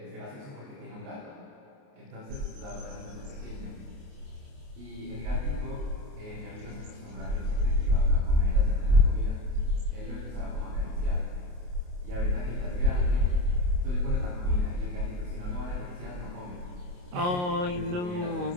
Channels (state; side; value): late; left; 28 ms